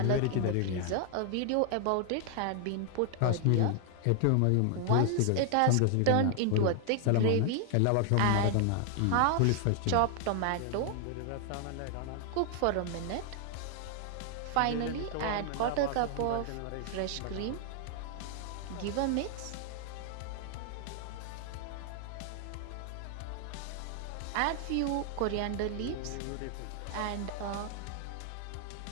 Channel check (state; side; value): different; both; correlation 0.00